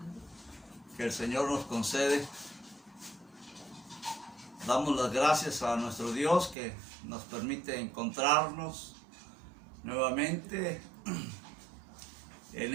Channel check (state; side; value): drops out; left; at 6.6 s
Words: que el Señor nos concede. Damos las gracias a nuestro Dios que nos permite encontrarnos nuevamente